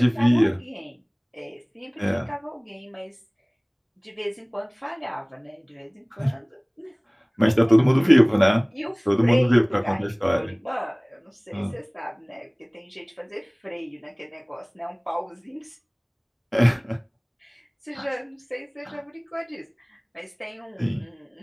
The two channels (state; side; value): identical; both; correlation 1.00